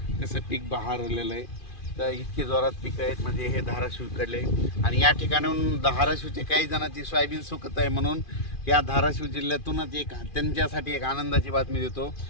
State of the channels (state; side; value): late; right; 2.4 ms